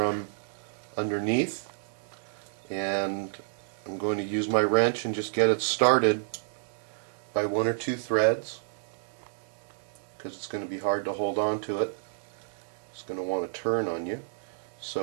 underneath, and I'm going to use my wrench and just get it started by one or two threads, because it's going to be hard to hold on to it. It's going to want to turn on you.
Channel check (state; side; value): silent; left; digital silence